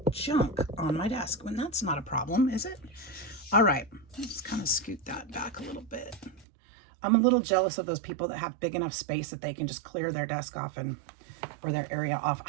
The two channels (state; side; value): drops out; left; at 6.5 s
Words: junk on my desk. And that's not a problem, is it? All right, let's just kind of scoot that back a little bit. I'm a little jealous of those people that have big enough space that they can just clear their desk off or their area off.